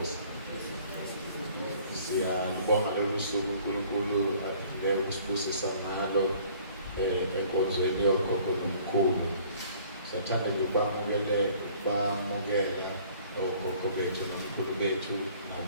Siyabonga lolu suku uNkulunkulu lelo kusibusisa ngalo enkonzweni yogogo nomkhulu. Sathanda bamukela ogogo bethu nomkhulu bethu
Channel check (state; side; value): inverted; both; correlation -0.55